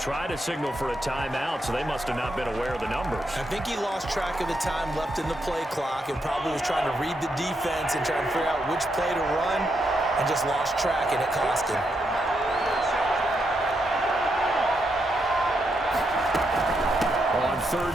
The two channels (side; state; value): both; normal; correlation 0.81